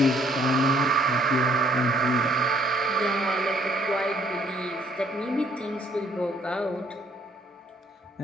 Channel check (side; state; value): both; normal; correlation 0.64